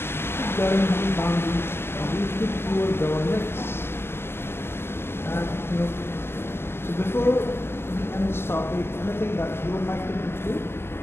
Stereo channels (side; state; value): right; late; 0.12 ms